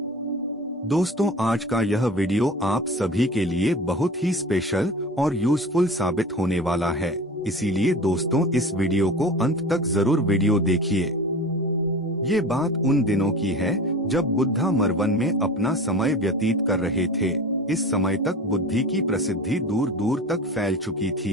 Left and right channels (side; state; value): both; normal; correlation 0.35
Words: दोस्तों, आज का यह वीडियो आप सभी के लिए बहुत ही स्पेशल और यूजफुल साबित होने वाला है। इसीलिए दोस्तों, इस वीडियो को अंत तक जरूर वीडियो देखिए। ये बात उन दिनों की है जब बुद्धा मरवन में अपना समय व्यतीत कर रहे थे। इस समय तक बुद्धि की प्रसिद्धि दूर दूर तक फैल चुकी